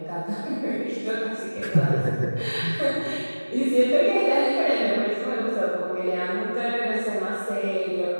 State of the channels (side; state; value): both; inverted; correlation -1.00